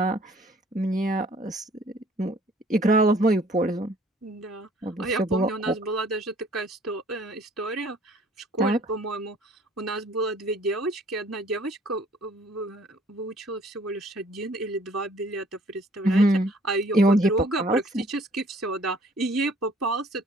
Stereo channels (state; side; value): normal; both; correlation 0.57